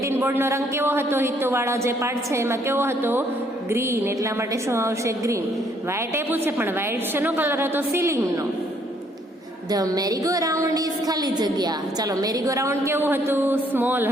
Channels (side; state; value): both; normal; correlation 0.66